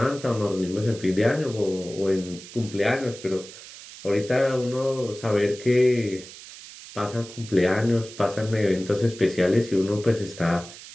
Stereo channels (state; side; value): noise; right; hiss, 16 dB below the sound